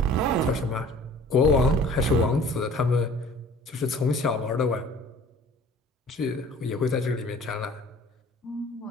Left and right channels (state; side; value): normal; both; correlation 0.48